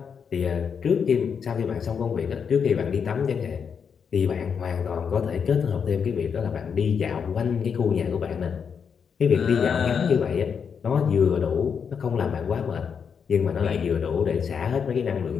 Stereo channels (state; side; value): quieter; right; 6.7 dB